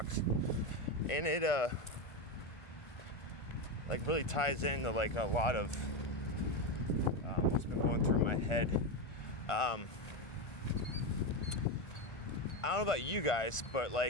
and it like really ties into like a lot of what's been going through my head. I don't know about you guys, but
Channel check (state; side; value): late; right; 1.5 ms